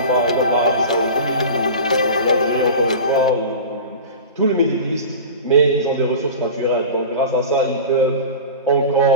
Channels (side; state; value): both; inverted; correlation -0.33